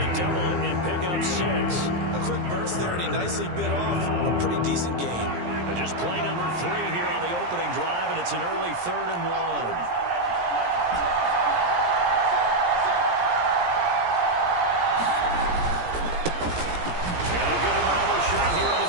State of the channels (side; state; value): left; late; 17 ms